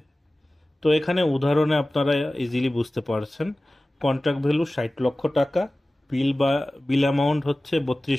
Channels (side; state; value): both; normal; correlation 0.97